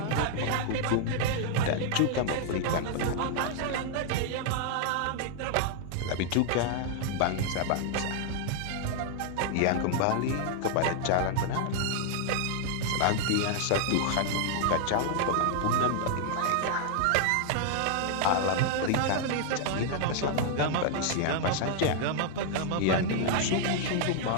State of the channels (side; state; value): both; different; correlation 0.00